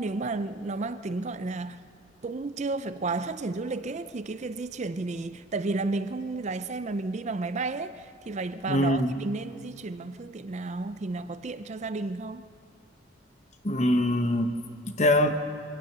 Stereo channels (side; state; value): both; normal; correlation 0.46